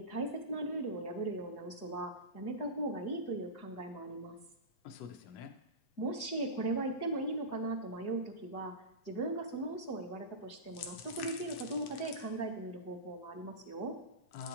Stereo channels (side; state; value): right; late; 8.0 ms